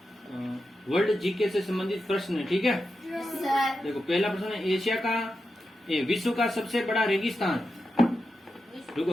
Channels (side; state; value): both; normal; correlation 0.89